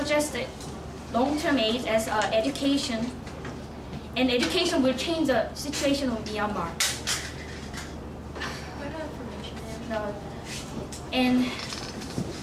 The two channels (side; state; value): both; identical; correlation 1.00